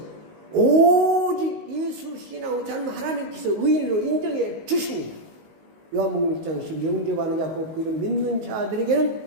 오직 예수 신앙으로 살면 하나님께서 의인으로 인정해 주십니다. 요한복음 1장 10 영접하는 자 곧 그를 믿는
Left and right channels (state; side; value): late; left; 19 ms